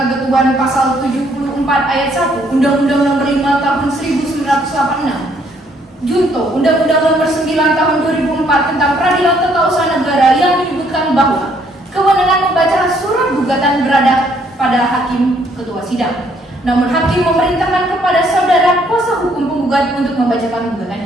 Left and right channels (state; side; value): normal; both; correlation 0.67